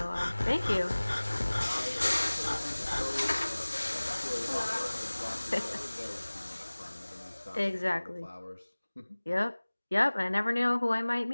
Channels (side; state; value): both; inverted; correlation -1.00